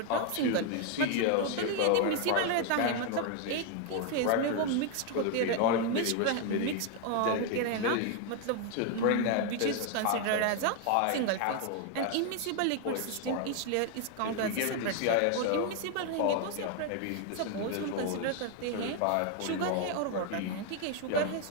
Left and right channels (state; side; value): different; both; correlation 0.01